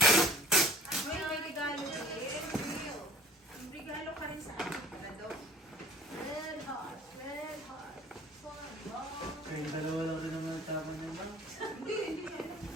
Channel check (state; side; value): normal; both; correlation 0.49